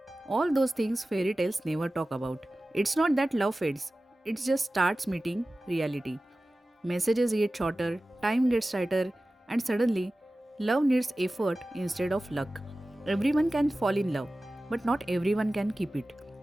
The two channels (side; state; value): both; normal; correlation 0.96